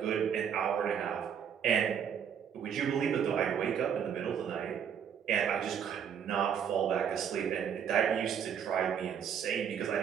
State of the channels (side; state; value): left; quieter; 8.0 dB